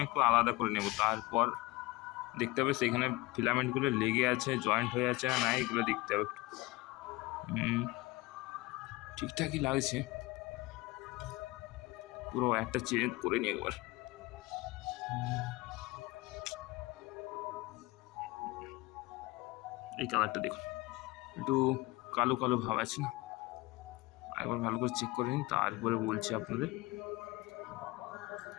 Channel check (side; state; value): right; quieter; 21.6 dB